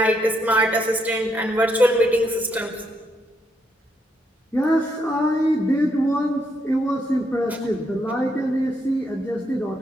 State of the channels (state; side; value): normal; both; correlation 0.77